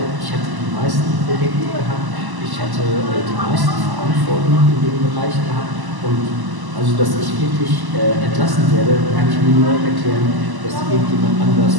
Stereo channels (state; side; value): late; left; 1.0 ms